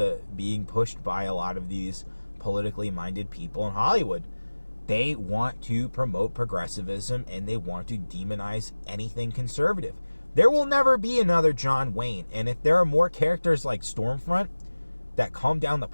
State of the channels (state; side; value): inverted; both; correlation -1.00